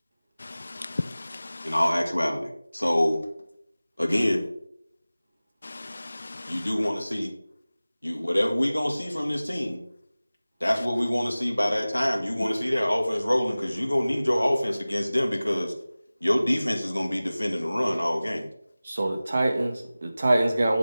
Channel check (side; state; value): both; inverted; correlation -0.98